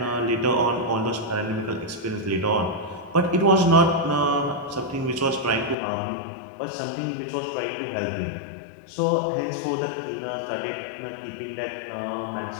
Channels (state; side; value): drops out; right; at 5.8 s